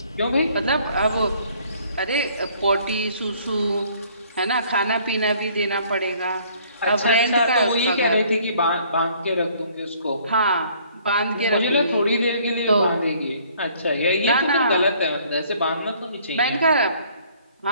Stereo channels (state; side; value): inverted; both; correlation -0.60